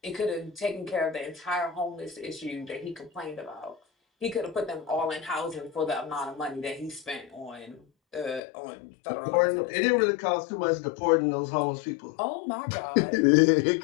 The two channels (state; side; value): drops out; right; at 8.4 s